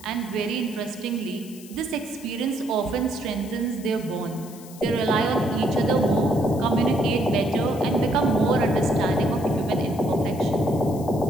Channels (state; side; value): noise; left; hiss, 19 dB below the sound